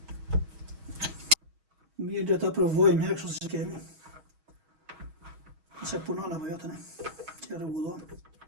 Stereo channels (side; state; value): left; late; 6.2 ms